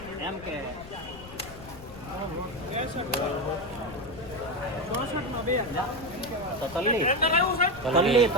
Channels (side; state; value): left; noise; rumble, 17 dB below the sound